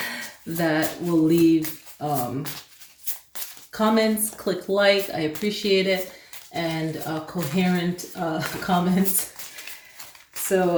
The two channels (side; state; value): both; identical; correlation 1.00